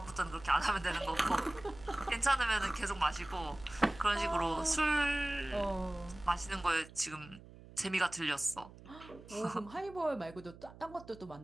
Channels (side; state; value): right; noise; hum, 19 dB below the sound